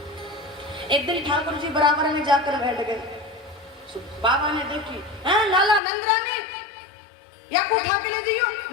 एक दिन ठाकुर जी बराबर में जाकर बैठ गए, बाबा ने देखी, हैं लाला नंदरानी या को उठा के ले जाइयो,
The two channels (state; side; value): drops out; right; at 5.8 s